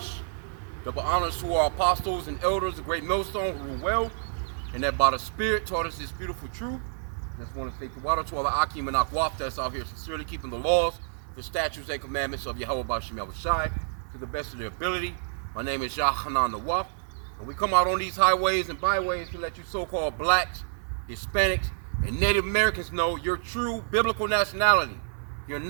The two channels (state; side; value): silent; left; 59 dB below the other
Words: Double honors to our apostles and elders, the great millstone who rule well, and that by the Spirit taught us this beautiful truth. Just want to say to water to all the H.I.M and Akwaf that's out here sincerely keeping the laws, the statutes and commandments of Yahweh B'Shem Yahweh Shai to the best of their ability. My name is Yahanan Nawaf. And we come out on these highways and byways to let you so-called blacks, Hispanics, and Native Americans know your true biblical nationality. You're